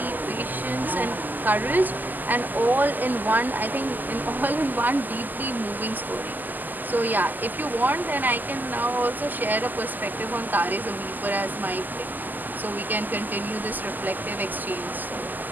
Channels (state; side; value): late; left; 0.086 ms